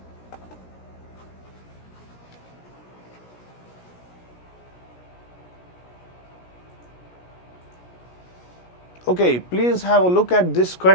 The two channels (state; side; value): late; right; 17 ms